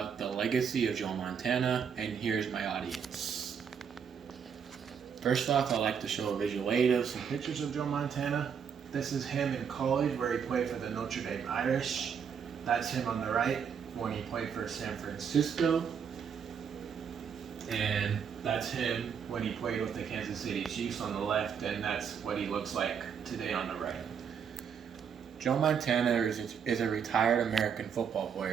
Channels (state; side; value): quieter; left; 7.2 dB